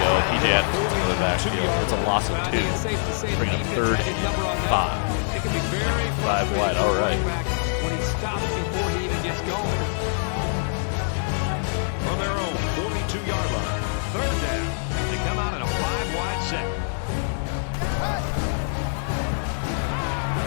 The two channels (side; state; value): right; silent; 62 dB below the other